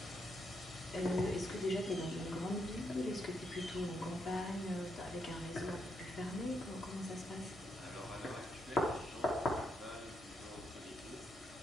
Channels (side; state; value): both; normal; correlation 0.79